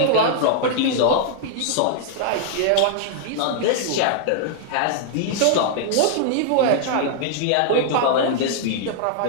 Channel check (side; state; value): both; different; correlation -0.01